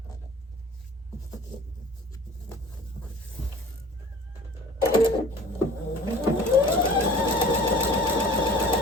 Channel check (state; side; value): normal; both; correlation 0.45